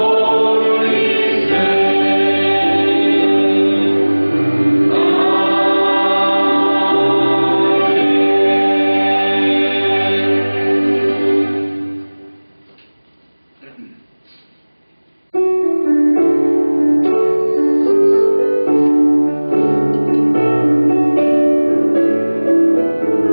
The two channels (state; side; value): inverted; both; correlation -1.00